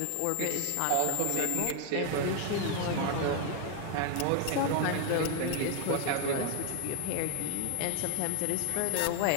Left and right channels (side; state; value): both; different; correlation 0.01